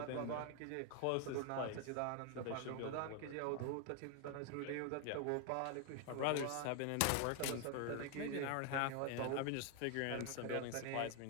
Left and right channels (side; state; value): both; different; correlation 0.00